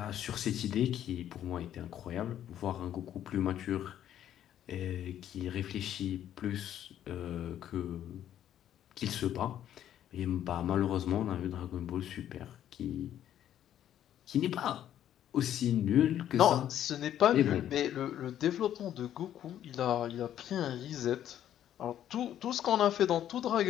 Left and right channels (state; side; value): quieter; right; 11.0 dB